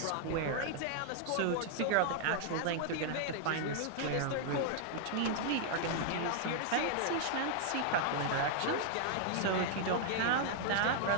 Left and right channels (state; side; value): different; both; correlation -0.01